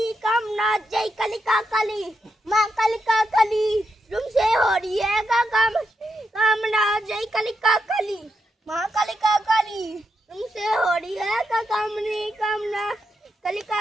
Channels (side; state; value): both; normal; correlation 0.84